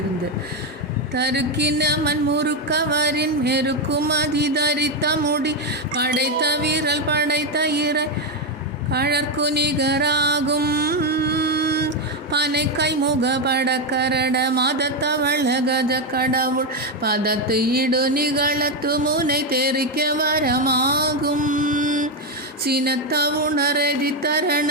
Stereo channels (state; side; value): normal; both; correlation 0.07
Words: தருக்கினமன் முறுக்கவரின் மெருக்கும் அதிதரித்த முடி படைத்த வீரல் படைத்த இறை கழற்கு நிகராகும் பனை கைமுக படக்கரட மதத்தவள கஜ கடவுள் பதத்து இடு நிகழத்து முனை தெரிக்க வரமாகும் சினத்த உணரதி தரண